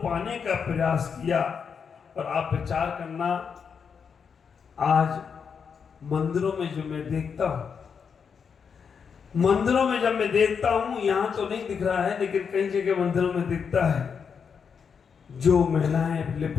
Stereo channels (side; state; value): right; quieter; 6.4 dB